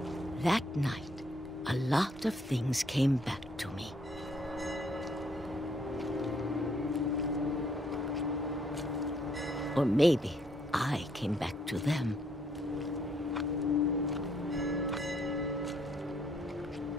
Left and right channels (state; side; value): normal; both; correlation 0.69